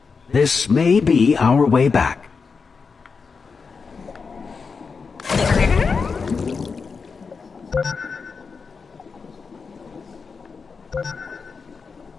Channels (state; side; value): quieter; right; 5.1 dB